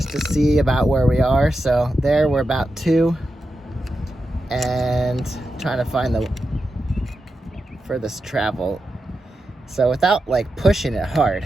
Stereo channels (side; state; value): both; normal; correlation 0.89